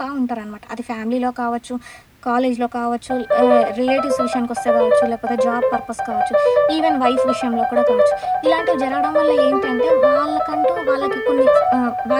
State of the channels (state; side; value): identical; both; correlation 1.00